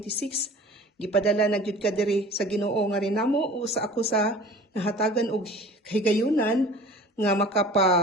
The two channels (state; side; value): normal; both; correlation 0.43